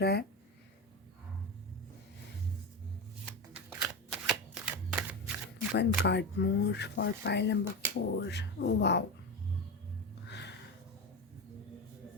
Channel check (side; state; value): both; normal; correlation 0.20